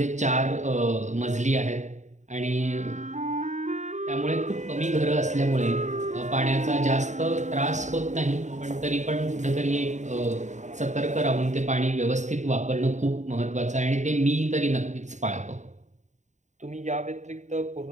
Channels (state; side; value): late; left; 0.34 ms